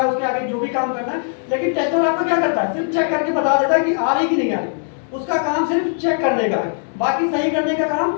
है, उसके आगे जो भी काम करना है। लेकिन टेस्टर आपका क्या करता है, सिर्फ चेक करके बता देता है कि आ रही कि नहीं आ रही। उसका काम सिर्फ चेक करने का है, बाकी सही करने का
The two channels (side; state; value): right; silent; 57 dB below the other